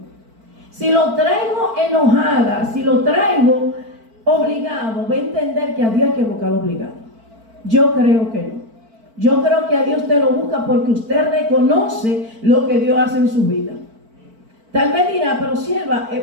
Si lo traigo enojada, si lo traigo obligado, va a entender que a Dios hay que buscarlo obligado. Yo creo que no. Yo creo que a Dios usted lo busca porque usted reconoce lo que Dios hace en su vida. Tal vez dirá, pero sierva,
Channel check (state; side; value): late; left; 4.5 ms